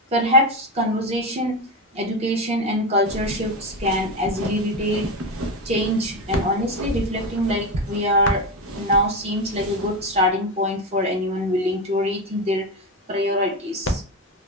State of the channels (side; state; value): both; normal; correlation 0.16